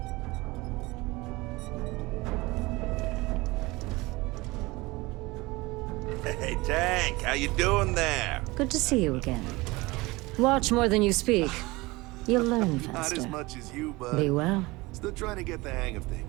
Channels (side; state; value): left; quieter; 22.1 dB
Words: Hey, Tank, how you doing there? Good to see you again. Watch more than you speak. You'll learn Not faster. as much as you, bud. Be well. Still trying to get the hang of